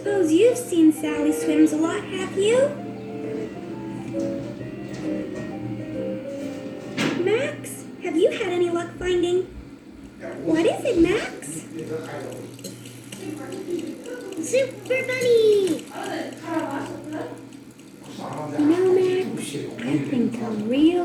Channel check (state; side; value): identical; both; correlation 1.00